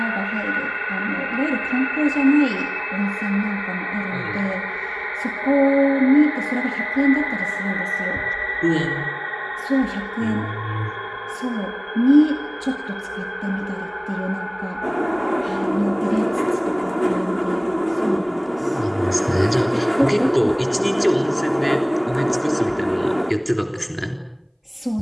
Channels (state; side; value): identical; both; correlation 1.00